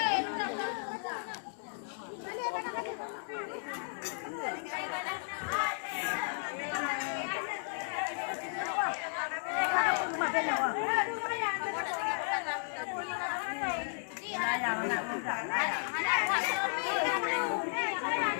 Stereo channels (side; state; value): right; silent; digital silence